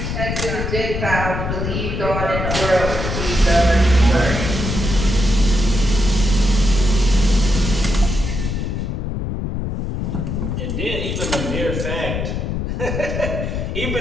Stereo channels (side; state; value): left; noise; rumble, 2 dB below the sound